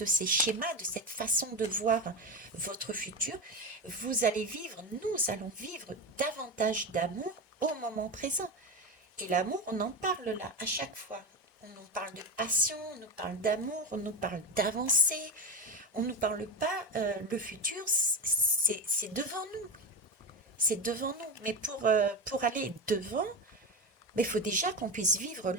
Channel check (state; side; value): normal; both; correlation 0.20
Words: ces schémas, de cette façon de voir votre futur, vous allez vivre, nous allons vivre davantage d'amour au moment présent. Et l'amour, on en parle là, à chaque fois. On nous parle de passion, on nous parle d'amour, on nous parle d'avancée, on ne nous parle pas, le futur, c'est devant nous. C'est devant nous. Mais pour aller devant, il faut déjà qu'on puisse vivre